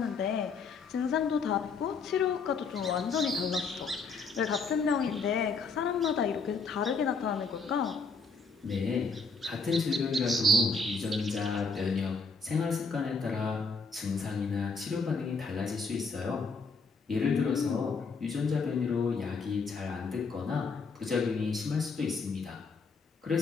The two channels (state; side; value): quieter; right; 4.4 dB